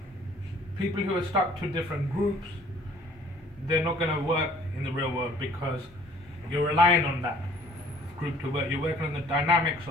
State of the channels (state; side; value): normal; both; correlation 0.55